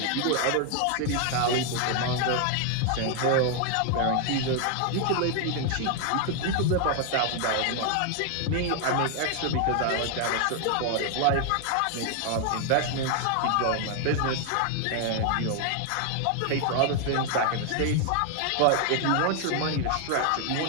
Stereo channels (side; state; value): both; different; correlation 0.00